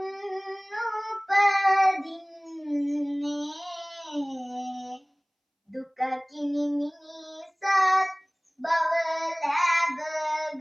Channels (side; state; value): both; identical; correlation 1.00